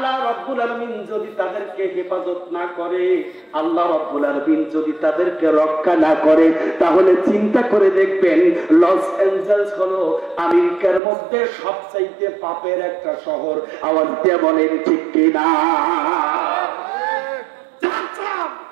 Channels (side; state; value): left; drops out; at 11.0 s